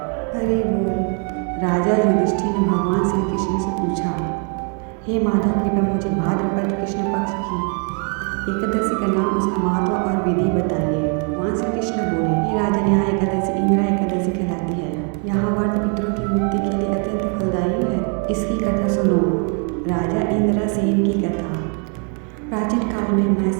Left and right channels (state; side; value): quieter; left; 38.4 dB